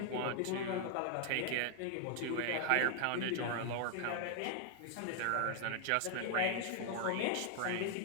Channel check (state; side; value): different; both; correlation 0.00